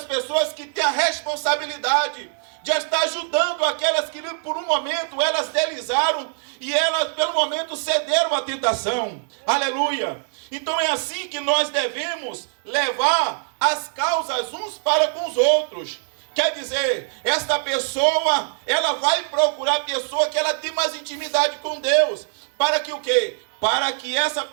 pessoas que têm a responsabilidade de estar ajudando aquelas que por um momento elas deslizaram e elas pelo momento cederam à tentação. Aleluia! Então é assim que nós devemos levar as causas uns para com os outros. Quer dizer, esta pessoa, ela vai procurar a pessoa que ela tem mais intimidade com Deus. para que o quê? Para que essa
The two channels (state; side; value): silent; left; digital silence